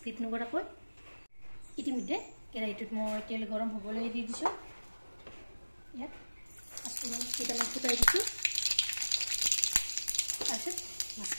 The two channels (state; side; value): inverted; both; correlation -1.00